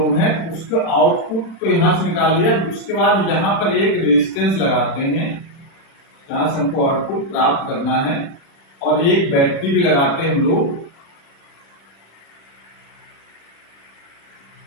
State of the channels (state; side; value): late; right; 36 ms